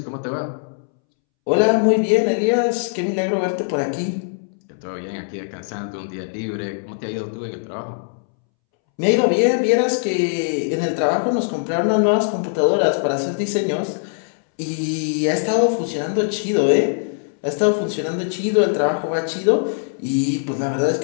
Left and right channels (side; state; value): right; silent; 65 dB below the other